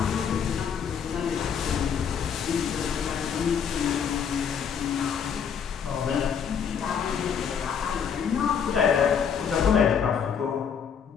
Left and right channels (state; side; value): quieter; right; 7.3 dB